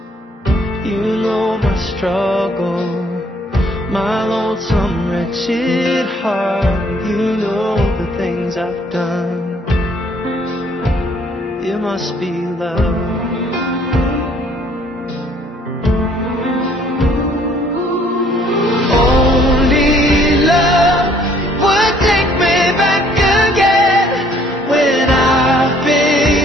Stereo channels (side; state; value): both; normal; correlation 0.61